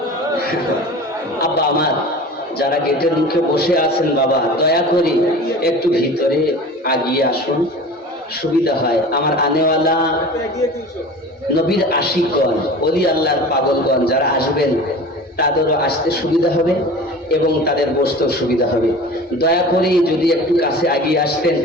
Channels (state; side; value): normal; both; correlation 0.38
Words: আব্বা আমার, যারা গেটের মুখে বসে আছেন, বাবা দয়া করে একটু ভিতরে আগিয়ে আসুন, সুবিধা হয়। আমার আনেওয়ালা নবীর আশিকগণ, ওলি আল্লাহর পাগলগণ যারা আসবেন তাদেরও আসতে সুবিধা হবে এবং তাদের বসতেও সুবিধা হবে। দয়া করে যদি একটু কাছে আগিয়ে আসতেন